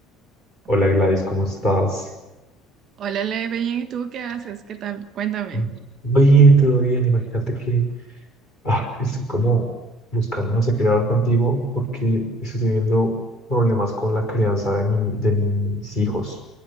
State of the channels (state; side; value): normal; both; correlation 0.56